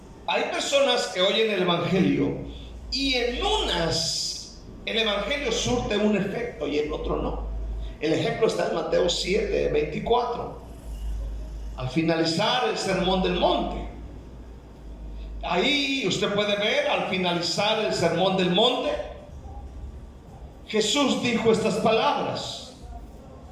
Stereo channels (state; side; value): identical; both; correlation 1.00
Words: hay personas que oyen el evangelio y en unas el evangelio surte un efecto y en otro no. El ejemplo está en Mateo 7:24. Al finalizar el sermón del monte, ahí usted puede ver, al finalizar el sermón del monte, Jesús dijo estas palabras: